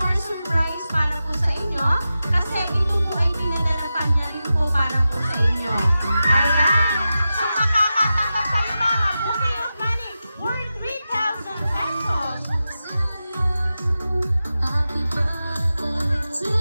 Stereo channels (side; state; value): both; inverted; correlation -0.92